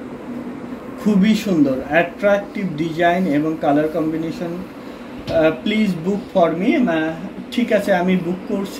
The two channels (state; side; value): identical; both; correlation 1.00